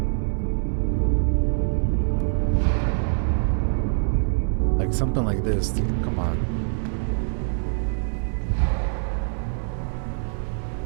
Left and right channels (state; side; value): silent; left; 62 dB below the other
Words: Like something like this, dude. Come on.